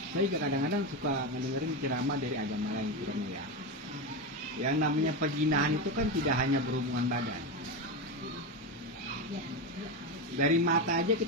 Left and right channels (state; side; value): normal; both; correlation 0.15